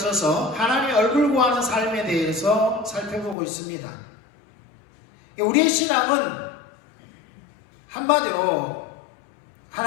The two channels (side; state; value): right; drops out; at 3.4 s